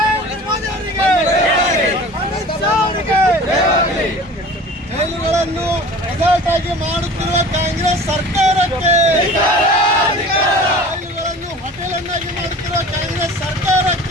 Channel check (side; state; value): both; normal; correlation 0.42